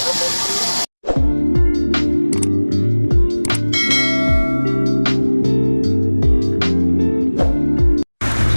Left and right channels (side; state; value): both; inverted; correlation -1.00